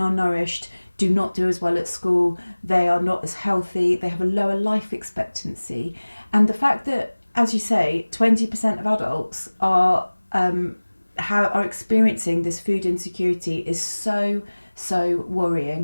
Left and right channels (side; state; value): both; inverted; correlation -1.00